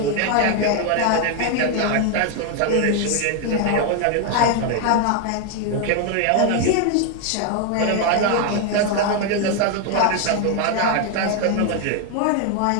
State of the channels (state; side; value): different; both; correlation 0.01